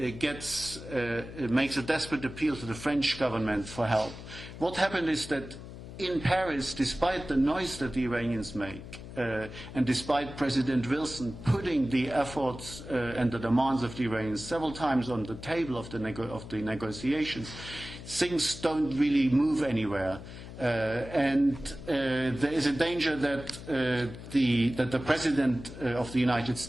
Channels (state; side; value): noise; left; hum, 13 dB below the sound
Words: a desperate appeal to the French government for help. What happened is that in Paris, despite the noise that the Iranians make, and despite President Wilson putting the efforts and the demands of the Iranians several times on the table of the negotiations, things don't really move anywhere. And there is a danger that the President of the United